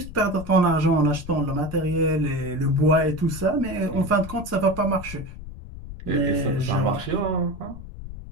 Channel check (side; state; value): left; noise; rumble, 12 dB below the sound